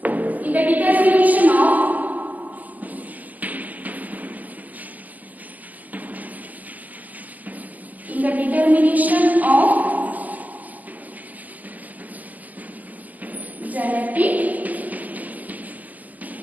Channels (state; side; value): late; left; 0.080 ms